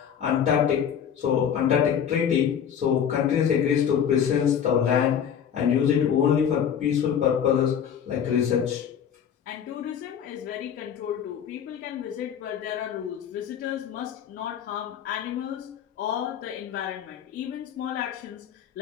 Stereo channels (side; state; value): right; quieter; 8.5 dB